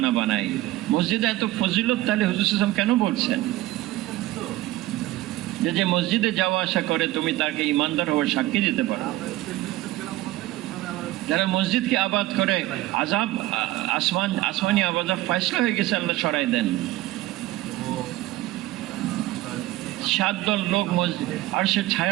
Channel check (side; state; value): left; quieter; 17.0 dB